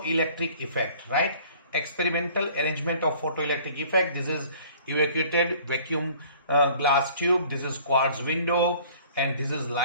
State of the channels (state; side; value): inverted; both; correlation -0.52